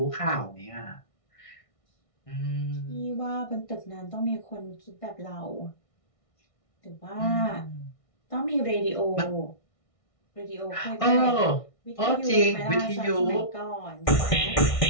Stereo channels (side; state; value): right; late; 1.6 ms